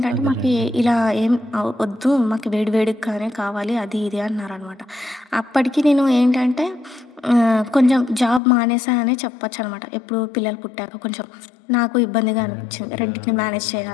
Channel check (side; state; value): right; drops out; at 8.4 s